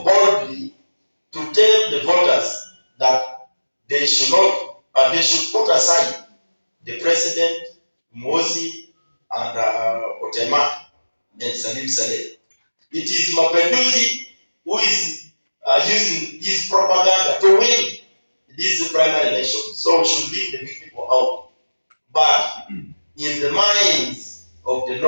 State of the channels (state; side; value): inverted; both; correlation -1.00